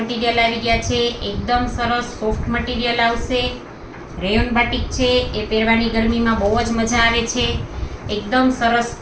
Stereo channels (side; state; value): both; identical; correlation 1.00